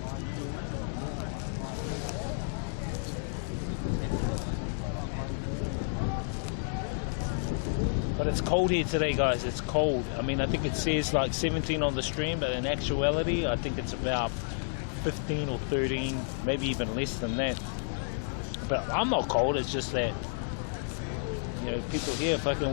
But it's cold here today, guys. It's cold. I mean, I think it says like 17 on the stream, but in actuality, I think it's about 15 or 13, maybe even less than that. But I'm not cold. It's just that, you know, people here fucking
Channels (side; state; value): right; silent; 57 dB below the other